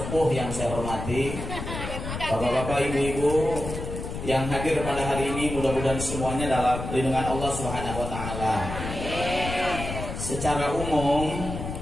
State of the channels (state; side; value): noise; left; rumble, 6 dB below the sound